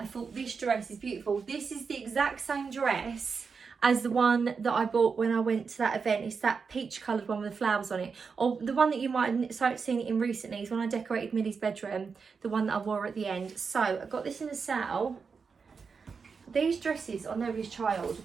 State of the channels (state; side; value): quieter; left; 5.4 dB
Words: thought this dress is beautiful. This is the exact same dress as the one that I bought when I went to that event. It's that peach coloured one with the flowers on it. Or the one that you might have seen it in recently is when I decorated Millie's bedroom, the one that I wore at the end. So I got this in a sale. These dresses on Nobody's Child